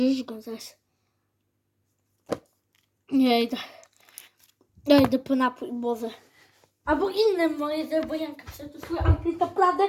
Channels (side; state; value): both; identical; correlation 1.00